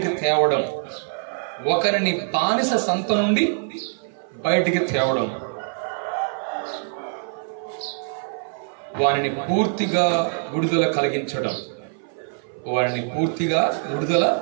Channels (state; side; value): silent; left; 57 dB below the other